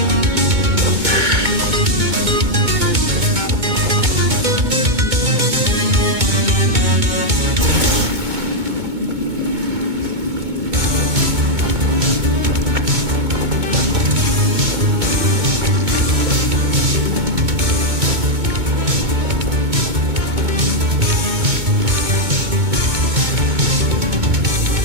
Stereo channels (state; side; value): late; left; 2.2 ms